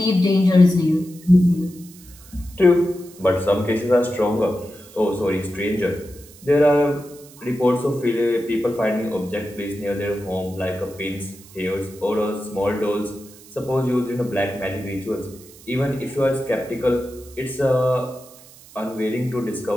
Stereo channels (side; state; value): right; noise; hiss, 22 dB below the sound